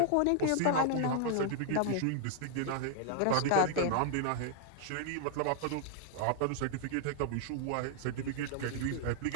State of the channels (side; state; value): both; different; correlation -0.01